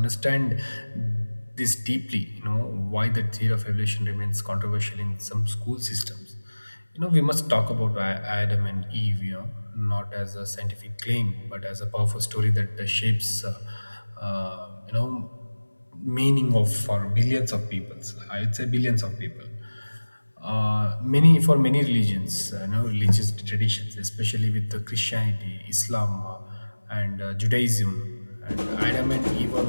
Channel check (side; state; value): both; inverted; correlation -1.00